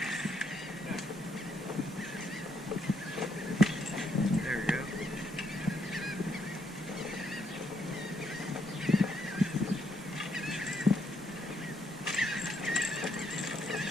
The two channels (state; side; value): normal; both; correlation 0.74